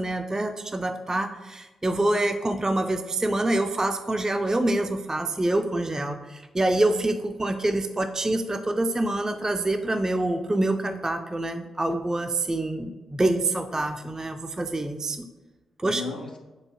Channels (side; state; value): both; normal; correlation 0.89